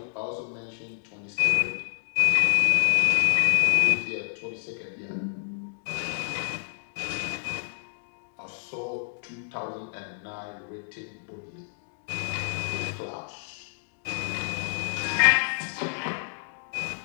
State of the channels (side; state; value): right; silent; digital silence